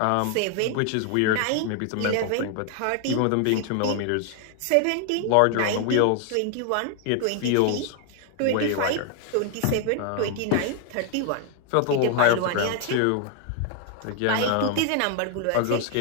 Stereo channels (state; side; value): different; both; correlation 0.00